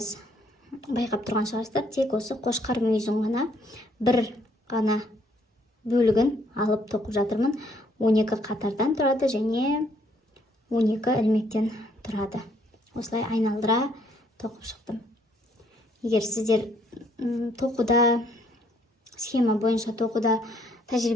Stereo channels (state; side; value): normal; both; correlation 0.67